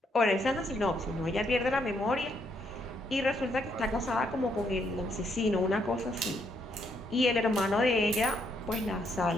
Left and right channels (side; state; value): both; normal; correlation 0.74